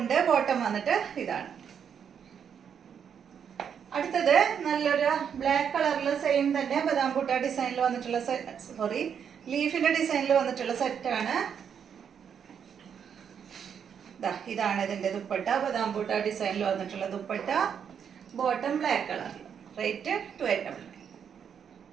ബോട്ടം വന്നിട്ട് ഇതാണ്. അടുത്തത് നല്ലൊരു ബ്ലാക്ക് കളറിൽ സെയിം തന്നെ ബദാം ബൂട്ട ഡിസൈനിൽ വന്നിട്ടുള്ള ലീഫിന്റെ ഡിസൈനിൽ വന്നിട്ടുള്ള സെറ്റാണ്. ഇതാണ് ഇതിന്റെ ദുപ്പട്ട. ബദാം ബൂട്ട ഡിസൈനിൽ വന്നിട്ടുള്ള ദുപ്പട്ട. ബോട്ടം ബ്ലാക്ക് കളറിൽ. റേറ്റ് 289.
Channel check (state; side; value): quieter; left; 7.7 dB